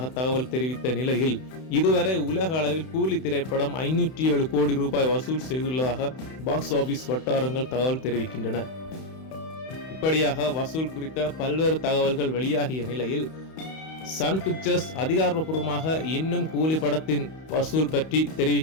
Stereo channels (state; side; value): late; right; 31 ms